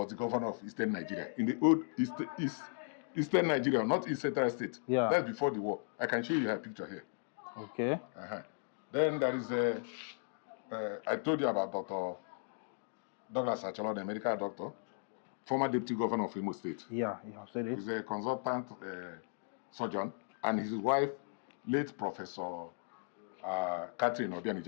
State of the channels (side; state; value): right; silent; digital silence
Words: the governor of Eastern Nigeria, in the old Eastern Nigeria, not East Central State. Yeah. That's before the war. I can show you her picture here. Okay. Then there is I told you about Dr. Douglas Acholonu, a medical doctor, former deputy governor of Imo State. Yeah, you have said it. He's a consultant surgeon, and his wife, late Professor Catherine